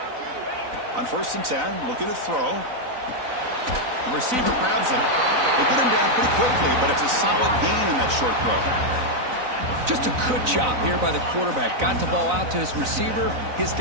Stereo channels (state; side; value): late; left; 4.0 ms